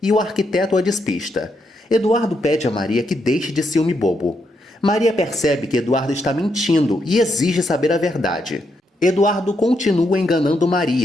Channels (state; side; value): normal; both; correlation 0.79